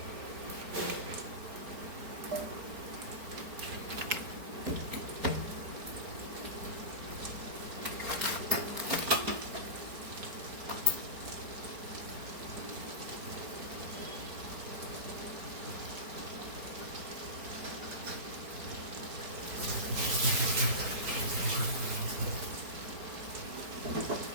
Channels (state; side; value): late; left; 4.7 ms